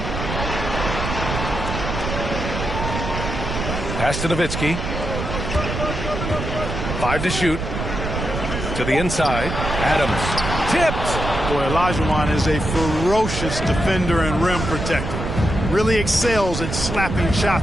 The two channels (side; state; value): right; noise; rumble, 4 dB below the sound